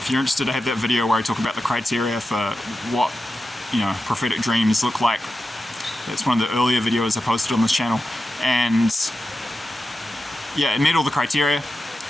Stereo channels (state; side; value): normal; both; correlation 0.91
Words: you're interested, I have that video where I talk about the criteria for what, you know, prophetic dreams look like. That's one of the earlier videos I posted on this channel, and yeah, it met all the criteria.